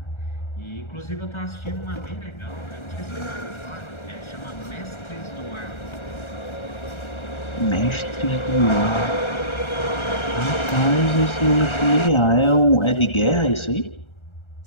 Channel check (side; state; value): right; late; 1.3 ms